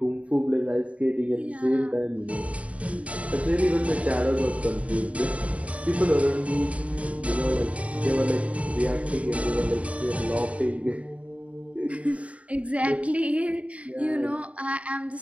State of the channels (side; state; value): left; late; 0.065 ms